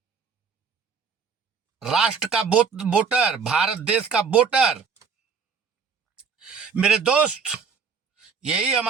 राष्ट्र का वोटर, भारत देश का वोटर। मेरे दोस्त, यही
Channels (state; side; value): quieter; left; 5.9 dB